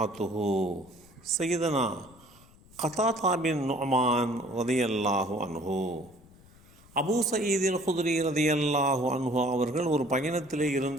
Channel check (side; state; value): left; noise; rumble, 25 dB below the sound